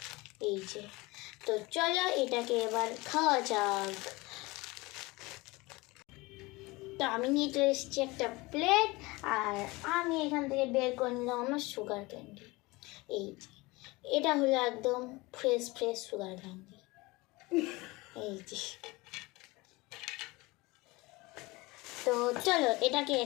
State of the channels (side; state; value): right; quieter; 22.9 dB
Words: এই যে। তো চলো এটাকে এবার খাওয়া যাক। তো আমি নিয়ে চলে এসেছি একটা প্লেট, আর আমি এখান থেকে বের করে নিলাম আমার সুগার ক্যান্ডি। এই যে, এটা হলো একদম ফ্রেশ ফ্রেশ সুগার ক্যান্ডি, এই যে। তো চলো এটাকে